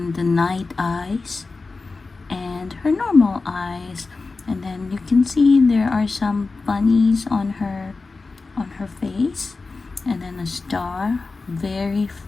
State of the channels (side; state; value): right; quieter; 3.9 dB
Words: the night eyes and her normal eyes. And then you can see there are some bunnies on her face, and then a star, very